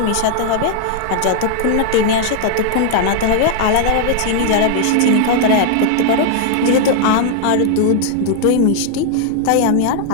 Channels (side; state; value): both; different; correlation 0.00